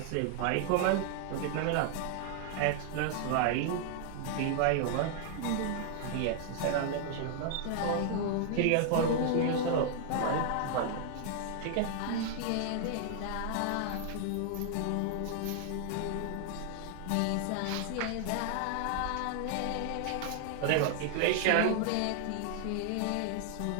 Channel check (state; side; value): different; both; correlation -0.01